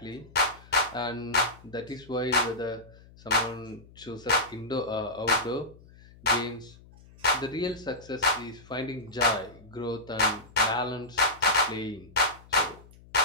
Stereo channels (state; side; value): noise; left; hum, 23 dB below the sound